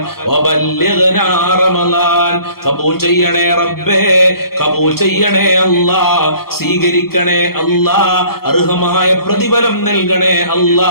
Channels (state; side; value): late; right; 0.94 ms